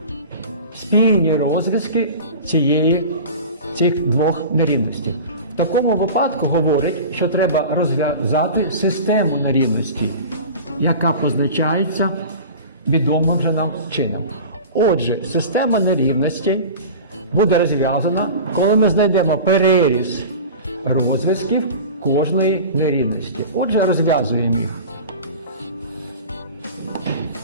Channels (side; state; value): both; inverted; correlation -0.35